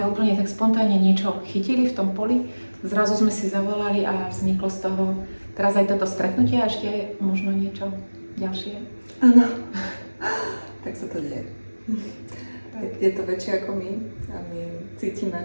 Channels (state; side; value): inverted; both; correlation -1.00